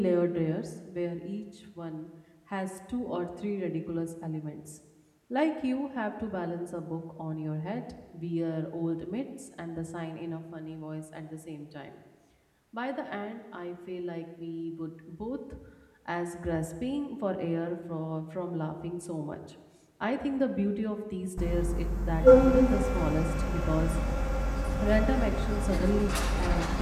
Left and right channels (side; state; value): both; identical; correlation 1.00